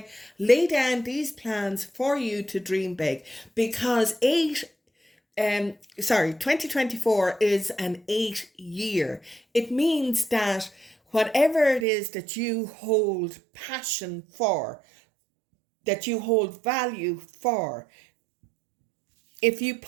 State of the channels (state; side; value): drops out; left; at 11.9 s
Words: Lay down these plans for you to dream big, because 2024 is an 8-year. It means that whatever it is that you hold passion for, that you hold value for, if you